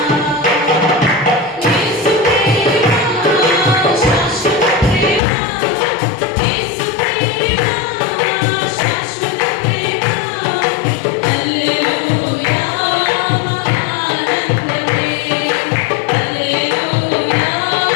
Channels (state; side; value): drops out; right; at 5.2 s